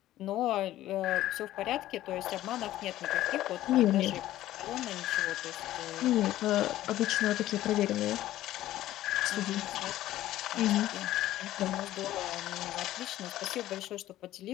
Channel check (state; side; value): quieter; right; 14.3 dB